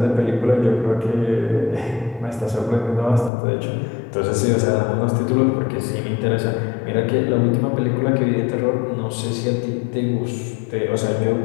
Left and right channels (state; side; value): drops out; right; at 3.3 s